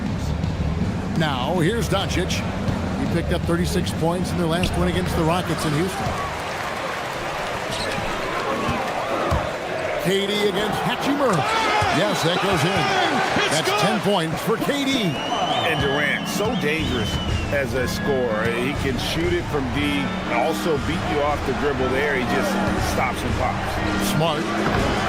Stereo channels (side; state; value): both; identical; correlation 1.00